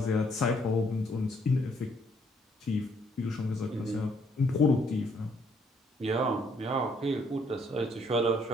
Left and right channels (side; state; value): both; normal; correlation 0.68